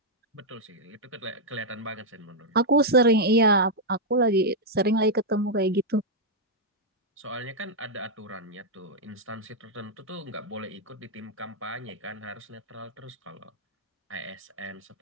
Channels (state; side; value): normal; both; correlation -0.04